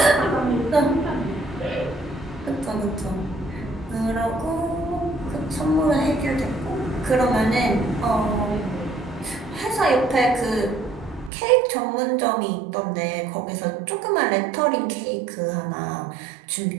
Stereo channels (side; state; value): left; drops out; at 11.3 s